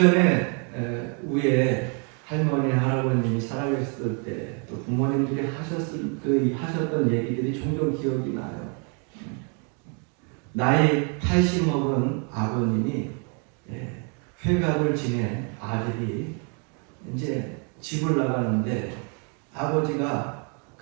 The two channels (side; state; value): left; quieter; 37.7 dB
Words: 위에 할머니, 할아버님이 살아계셨을 때 또 부모님들이 하셨던 얘기들이 종종 기억이 나요. 나이 80 먹은 아버님이 회갑을 지낸 아들이 이제 집을 나가는데 아버지가